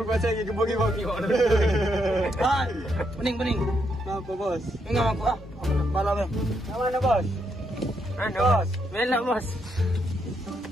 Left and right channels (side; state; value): both; normal; correlation 0.78